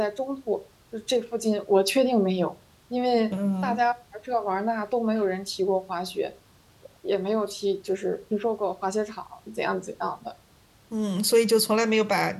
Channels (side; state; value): both; identical; correlation 1.00